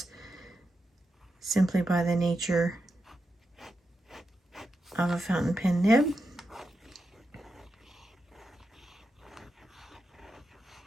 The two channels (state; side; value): normal; both; correlation 0.87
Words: simply by the nature of a fountain pen nib.